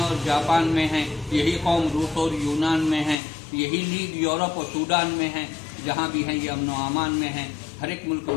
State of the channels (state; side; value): drops out; right; at 3.2 s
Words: और जापान में हैं, यही कौम रूस और यूनान में है, यही लीग यूरोप और सूडान में है, जहाँ भी हैं ये अमन व अमान में हैं। हर एक मुल्क